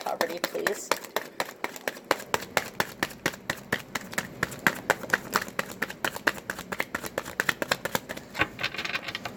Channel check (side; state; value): both; identical; correlation 1.00